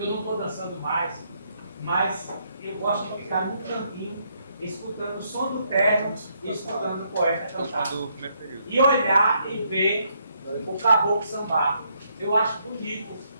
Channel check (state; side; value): inverted; both; correlation -0.74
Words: não estou dançando mais, mas eu gosto de ficar no cantinho, escutando o som do terno e escutando o poeta cantar. E olhar e ver o caboclo sambar. Eu acho bonito.